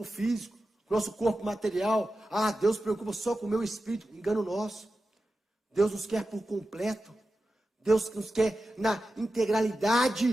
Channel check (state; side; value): normal; both; correlation 0.92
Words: físico, com o nosso corpo material. Ah, Deus se preocupa só com o meu espírito. Engano nosso. Deus nos quer por completo. Deus nos quer na